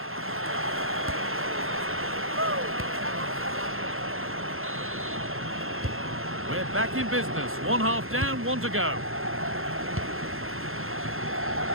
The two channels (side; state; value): left; late; 0.61 ms